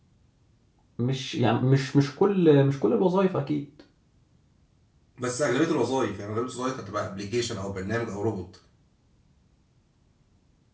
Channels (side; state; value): both; identical; correlation 1.00